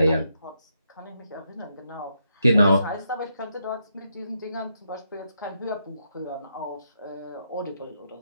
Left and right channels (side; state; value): both; inverted; correlation -0.80